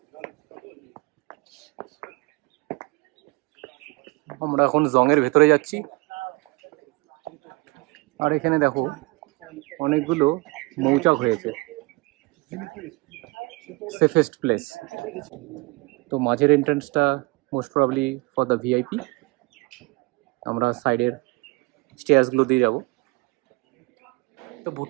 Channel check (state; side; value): quieter; left; 25.2 dB